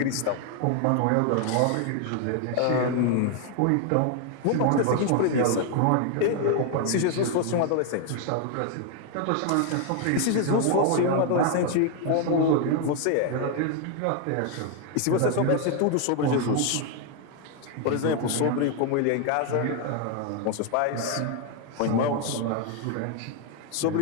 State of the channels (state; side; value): different; both; correlation 0.01